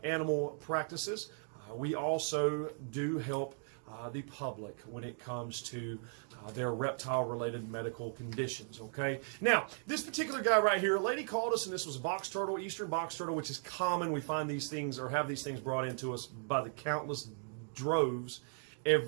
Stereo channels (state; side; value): silent; left; 53 dB below the other